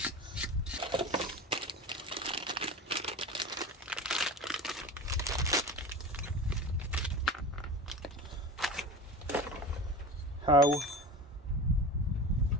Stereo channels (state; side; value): normal; both; correlation 0.31